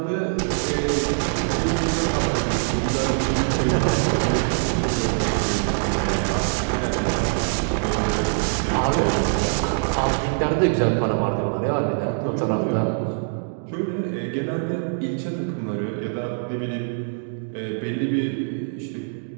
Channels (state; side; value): silent; left; digital silence